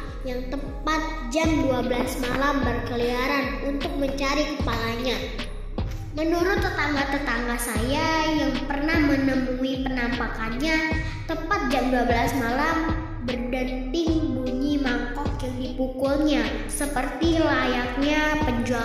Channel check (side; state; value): both; identical; correlation 1.00